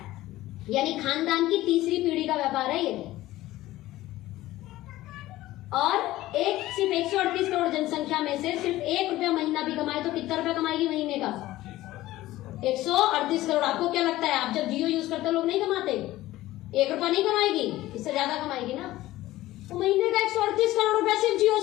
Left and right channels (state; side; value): quieter; right; 16.3 dB